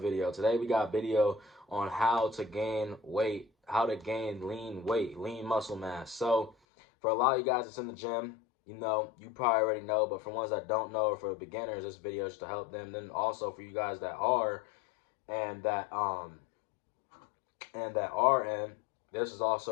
video. Today we got a video on how to gain weight, how to gain lean weight, lean muscle mass. So for a lot of you guys that's in the gym, you probably already know, but for ones that don't know or for beginners, this video is to help them. Then also for you guys that are and that are in, this is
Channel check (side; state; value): right; drops out; at 6.6 s